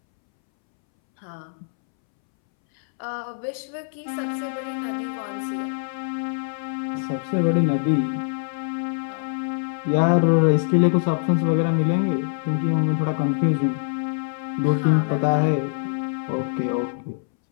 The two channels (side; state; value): right; silent; 63 dB below the other